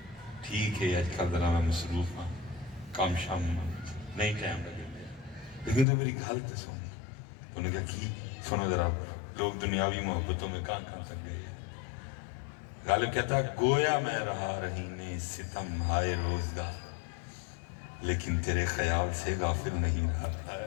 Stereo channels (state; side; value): drops out; right; at 5.9 s